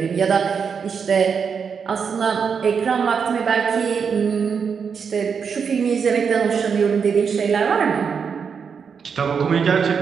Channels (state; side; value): quieter; left; 6.3 dB